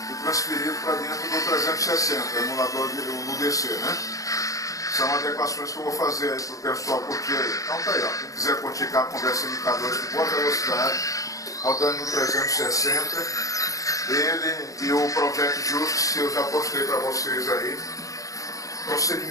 e transferido para dentro do 360, o emulador no DC, né? São adequações que eu vou fazer aí para o pessoal curtir aí. Então tá aí, ó. Quem quiser curtir cá com conversa MK2 de boa velocidade, rodando no 360, ele e o Project Justice eu já postei para vocês aí.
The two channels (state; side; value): late; right; 0.16 ms